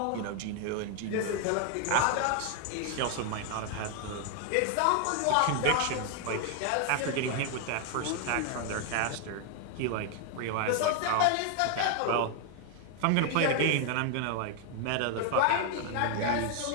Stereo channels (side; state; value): both; different; correlation 0.00